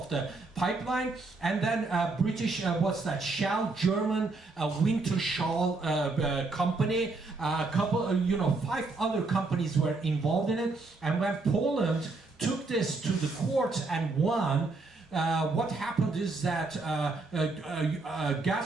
the pipeline, and then British, what's that, Shell, German Wintershall company, a couple, 5 other companies were involved in it. And when Poland took this to the courts and won, what happened is that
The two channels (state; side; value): quieter; left; 3.6 dB